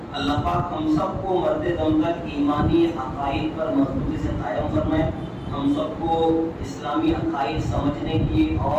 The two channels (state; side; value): identical; both; correlation 1.00